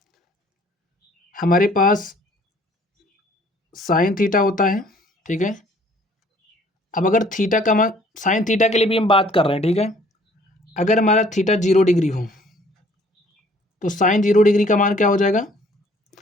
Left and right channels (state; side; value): normal; both; correlation 0.58